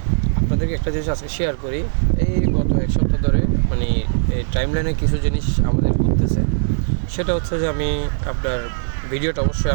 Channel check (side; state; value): left; silent; 65 dB below the other